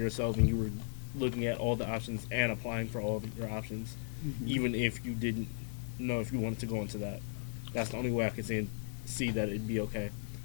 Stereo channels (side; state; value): right; silent; 54 dB below the other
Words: and you were looking at all the options and applying for all of your options, even if you didn't know if you wanted to go into that, that's the only way I could see that it'd be okay.